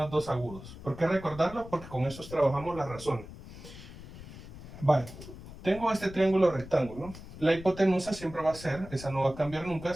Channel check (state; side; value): noise; left; rumble, 14 dB below the sound